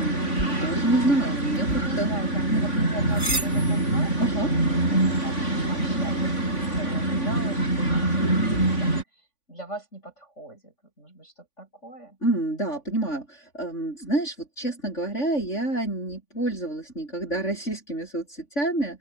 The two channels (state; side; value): late; right; 3.5 ms